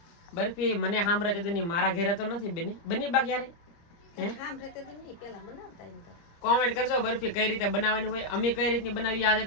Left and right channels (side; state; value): right; late; 30 ms